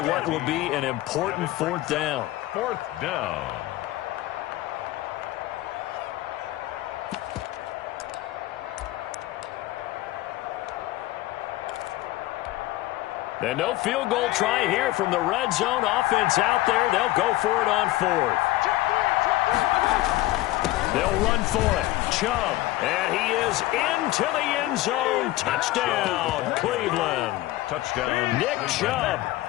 what will be an important 4th down. 4th down. And no field goal try here from the red zone. Offense out there. They'll go for it on 4th. They'll run for it. Chubb. And he is into the end zone. Touchdown, Cleveland. Touchdown. Nick Chubb.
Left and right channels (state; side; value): quieter; right; 17.3 dB